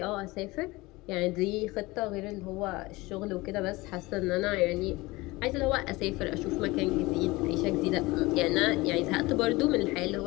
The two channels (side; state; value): right; quieter; 21.6 dB